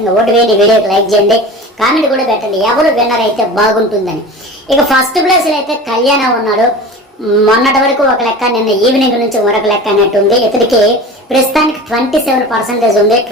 ఓటు వేయండి, వీడియోకి లైక్ చేయండి, కామెంట్ కూడా పెట్టండి ఎవరు విన్నర్ అయితే బాగుంటుందని. ఇక ఫస్ట్ ప్లేస్ లో అయితే కళ్యాణ ఉన్నాడు. మొన్నటి వరకు ఒక లెక్క, నిన్న ఈవినింగ్ నుంచి మరొక లెక్క అన్నట్టుంది. ఇతడికి ప్రస్తుతానికి 27% ఉంది.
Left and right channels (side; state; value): both; normal; correlation 0.35